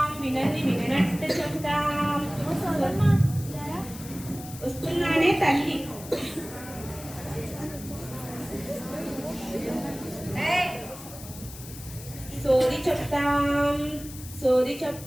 వినది విననట్టు చెప్తాం. వస్తున్నానే తల్లి. సోది చెప్తాం, సోది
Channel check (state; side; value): noise; left; hiss, 15 dB below the sound